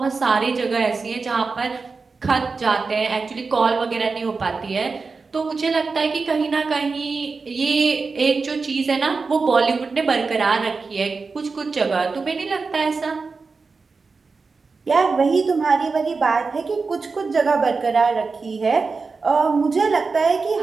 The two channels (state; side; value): quieter; left; 4.4 dB